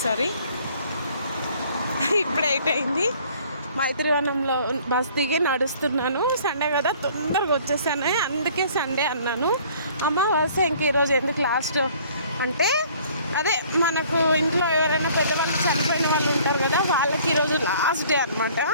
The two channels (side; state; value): both; inverted; correlation -0.55